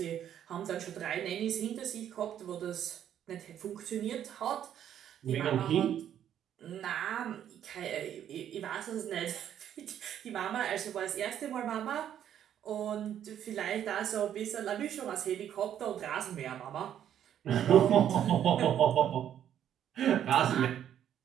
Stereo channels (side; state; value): left; quieter; 10.1 dB